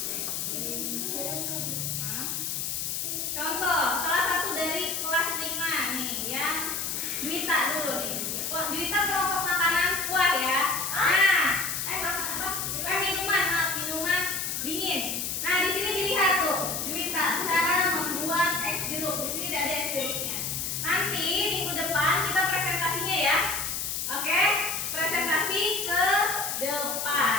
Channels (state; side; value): noise; left; hiss, 2 dB below the sound